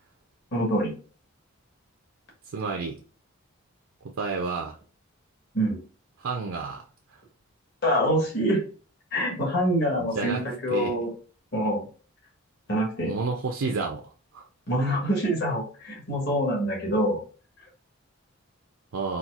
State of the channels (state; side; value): normal; both; correlation 0.29